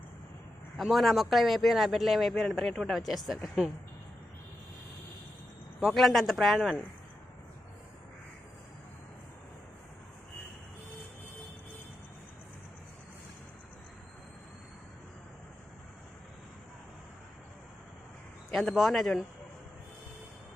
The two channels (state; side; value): normal; both; correlation 0.88